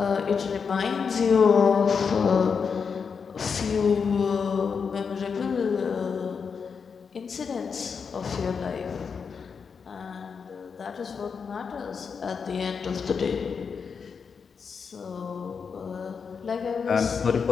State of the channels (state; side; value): quieter; right; 5.9 dB